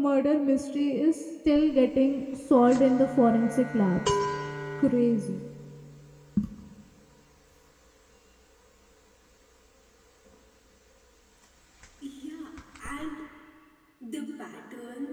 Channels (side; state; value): both; identical; correlation 1.00